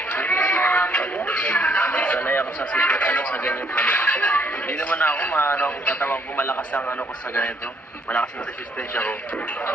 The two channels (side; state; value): both; normal; correlation 0.68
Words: Sanay ako sa ano sa ganyan ano. Hindi naman ako maano kung tatawag ko malakas ang ano ko sa ganito. Malakas ang resistensya ko.